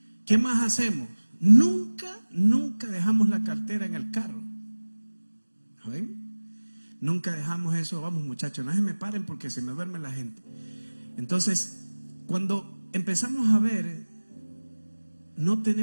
¿Qué más hacemos? Nunca dejamos la cartera en el carro. ¿Amén? Nunca dejamos eso. Vamos, muchachos, no se me paren porque se me duerme la gente. Entonces, cuando empezamos a ver,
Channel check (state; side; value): inverted; both; correlation -1.00